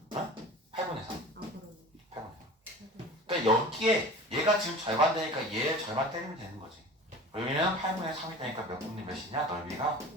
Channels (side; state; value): both; normal; correlation 0.38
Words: 3. 8분의 3. 아 그러네. 8분의 3. 그러니까 여기에 얘가 지금 절반 되니까 얘 절반 때리면 되는 거지. 여기는 8분의 3이 되니까 몇 분의 몇이냐? 넓이가